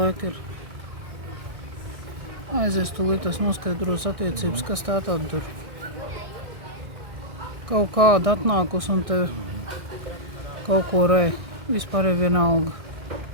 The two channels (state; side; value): late; left; 1.6 ms